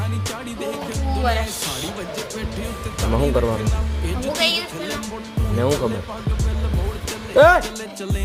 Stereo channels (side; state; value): both; identical; correlation 1.00